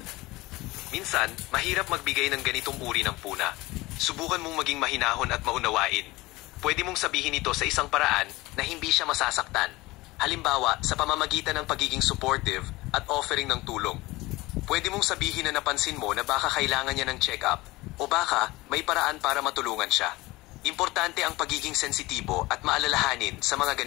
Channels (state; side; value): quieter; right; 20.4 dB